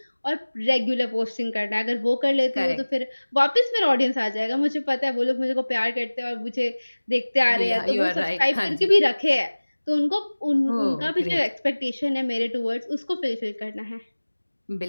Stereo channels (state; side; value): inverted; both; correlation -1.00